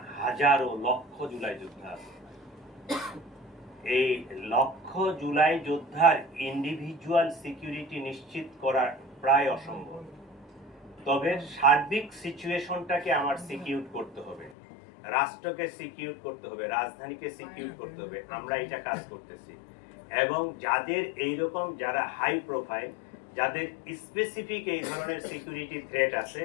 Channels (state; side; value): drops out; right; at 14.6 s